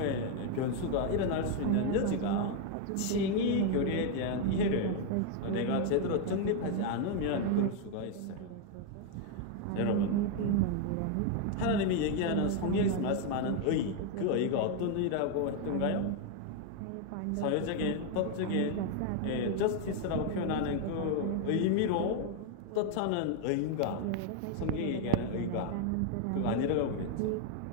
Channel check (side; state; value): both; different; correlation 0.01